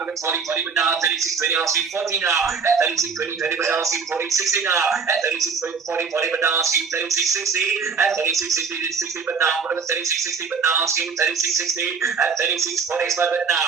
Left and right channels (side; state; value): left; quieter; 5.5 dB